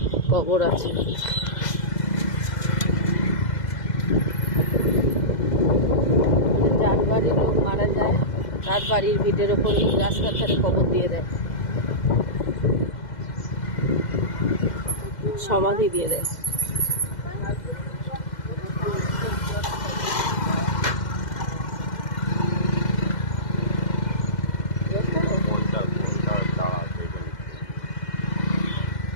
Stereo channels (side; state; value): right; late; 2.1 ms